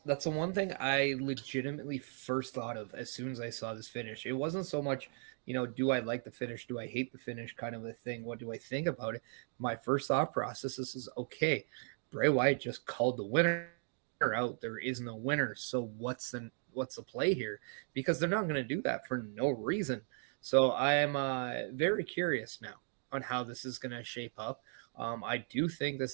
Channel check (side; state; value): left; silent; 53 dB below the other